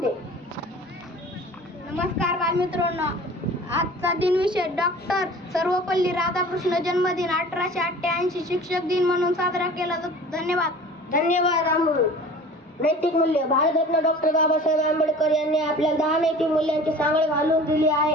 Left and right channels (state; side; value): normal; both; correlation 0.43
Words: नमस्कार बालमित्रांनो, आजचा दिनविशेष डॉक्टर सर्वपल्ली राधाकृष्ण जन्मदिन 1888 शिक्षक दिन म्हणून साजरा केला जातो. धन्यवाद अमोल. नैतिक मूल्य. भारतरत्न डॉक्टर बाबासाहेब आंबेडकर यांनी आपल्याला 10 नैतिक मूल्यांची सांगड घालून दिली